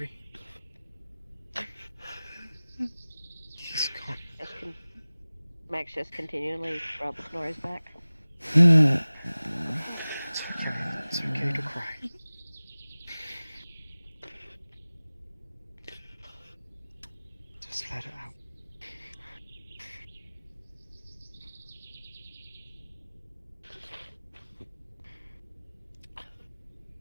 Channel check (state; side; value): inverted; both; correlation -0.98